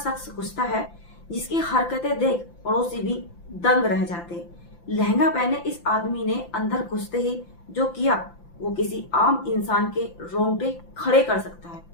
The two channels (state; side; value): late; right; 5.9 ms